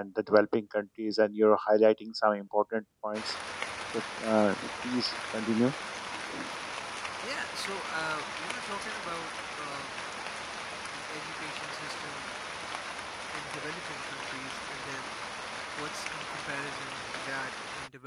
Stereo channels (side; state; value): both; identical; correlation 1.00